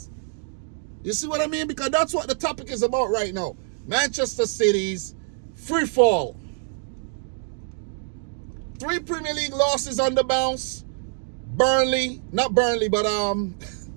You see what I mean? Because that's what the topic is about right now. Manchester City's free fall. 3 Premier League losses on the bounce. Not Burnley, but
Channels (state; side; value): silent; left; digital silence